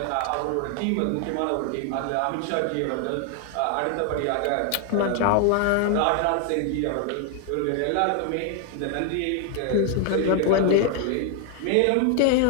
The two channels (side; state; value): both; different; correlation 0.00